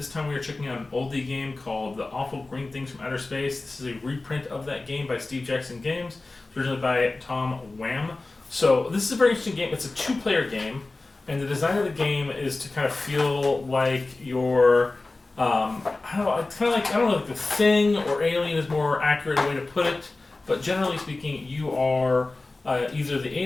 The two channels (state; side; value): quieter; right; 3.3 dB